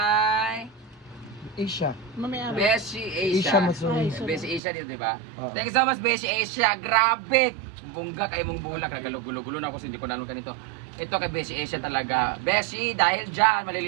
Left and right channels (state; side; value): drops out; left; at 4.6 s